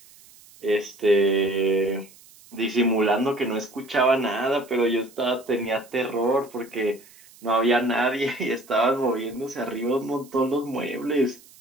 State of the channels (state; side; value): noise; right; hiss, 24 dB below the sound